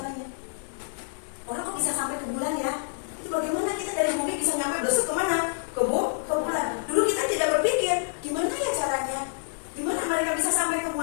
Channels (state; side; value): silent; right; 60 dB below the other